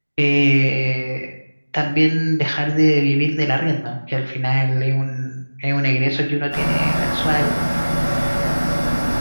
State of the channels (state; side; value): inverted; both; correlation -1.00